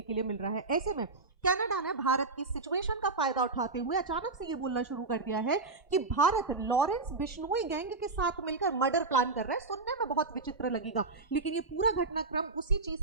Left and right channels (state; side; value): quieter; left; 3.7 dB